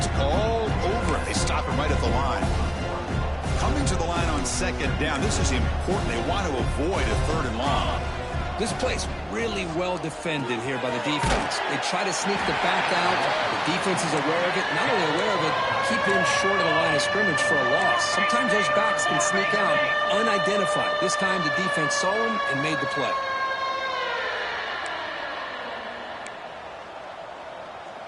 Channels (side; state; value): both; identical; correlation 1.00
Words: all over it. They stop him right at the line. Coming to the line on 2nd down. This is important. They want to avoid a 3rd and long. This play's really well defended here by the defense. They try to sneak the back out. The defense is aware of it. Not only aware of it, keep him short of the line of scrimmage for a loss. Sometimes those backs can sneak out unidentified. This time the defense saw him and made the play.